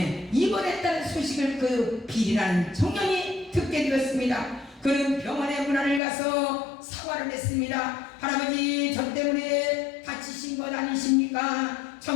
입원했다는 소식을 그 빌이라는 청년이 듣게 되었습니다. 그는 병원의 문안을 가서 사과를 했습니다. 할아버지, 저 때문에 다치신 것 아니십니까?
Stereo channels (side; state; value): right; drops out; at 6.0 s